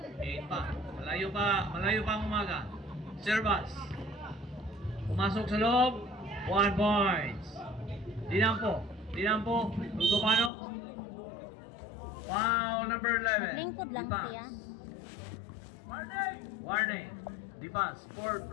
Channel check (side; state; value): right; drops out; at 10.5 s